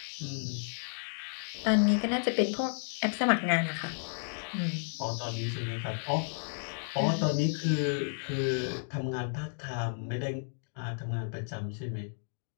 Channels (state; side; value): silent; right; digital silence